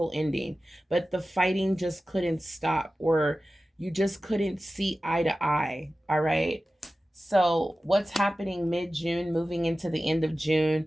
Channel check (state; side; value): normal; both; correlation 0.95